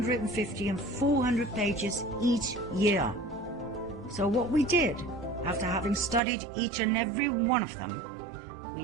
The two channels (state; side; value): drops out; left; at 6.2 s